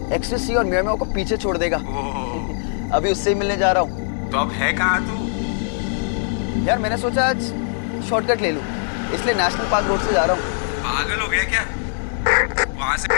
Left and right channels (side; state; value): right; silent; digital silence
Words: एक्सटेसी और मियामी को पीछे छोड़ देगा। अभी उससे ही मिलने जा रहा हूँ। तो अब है कहाँ तू? यार मैंने सोचा आज शॉर्टकट ले लूँ, इसलिए नेशनल पार्क रोड से जा रहा हूँ। पागल हो गया क्या? वहां से